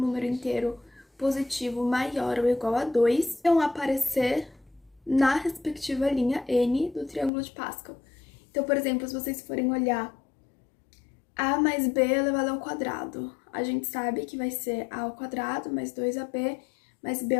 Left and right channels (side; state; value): right; drops out; at 7.3 s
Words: inteiro positivo maior ou igual a 2, vão aparecer na respectiva linha n do triângulo de Pascal. Então, por exemplo, se vocês forem olhar a mais b elevado ao quadrado, a gente sabe que vai ser a ao quadrado mais 2ab mais b